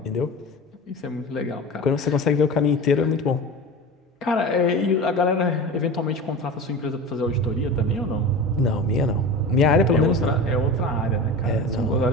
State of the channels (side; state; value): both; normal; correlation 0.31